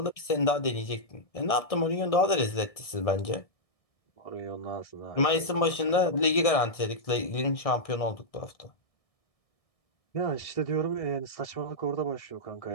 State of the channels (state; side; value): late; right; 1.6 ms